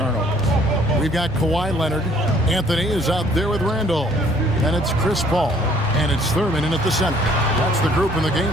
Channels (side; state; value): both; normal; correlation 0.59